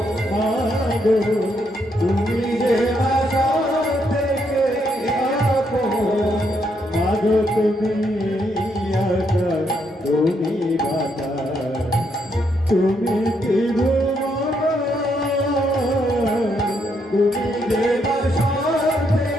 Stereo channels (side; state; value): both; normal; correlation 0.76